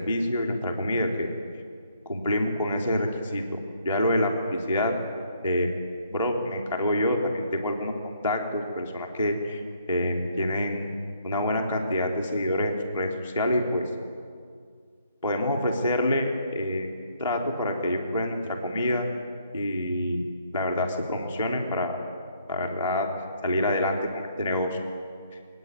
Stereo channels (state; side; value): inverted; both; correlation -0.68